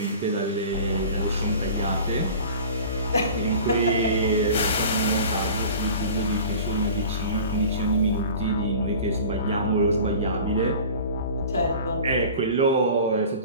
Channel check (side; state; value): both; inverted; correlation -0.41